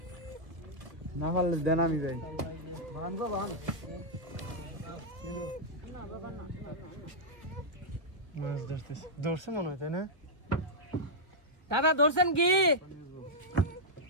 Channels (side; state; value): left; late; 1.2 ms